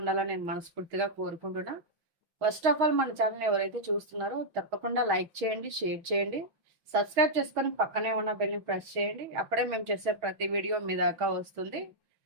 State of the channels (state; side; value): late; left; 6.3 ms